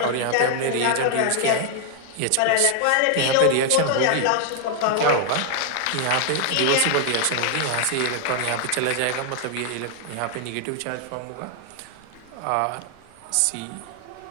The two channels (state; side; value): different; both; correlation 0.00